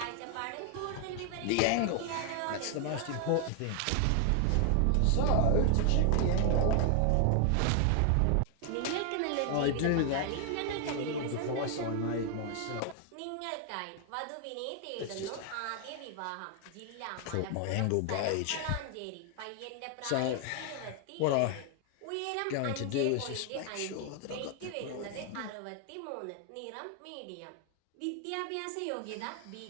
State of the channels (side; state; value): both; different; correlation 0.00